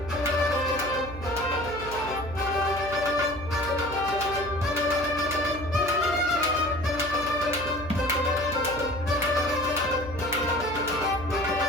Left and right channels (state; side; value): noise; right; hum, 12 dB below the sound